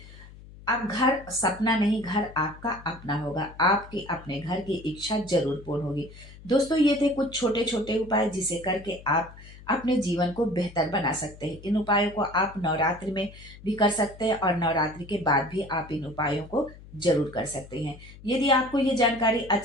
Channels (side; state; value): left; noise; hum, 19 dB below the sound